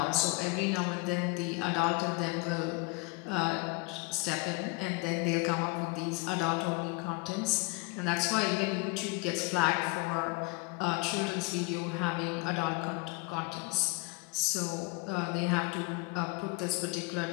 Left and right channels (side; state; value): right; quieter; 27.1 dB